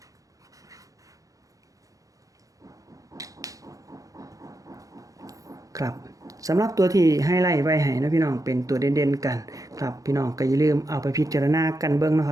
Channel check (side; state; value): left; late; 0.17 ms